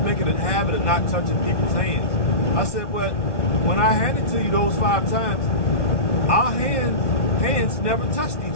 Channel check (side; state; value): right; late; 1.0 ms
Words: make it a habit of not touching people's hands. I said, but when I handed to you those 5 times, our hands never touched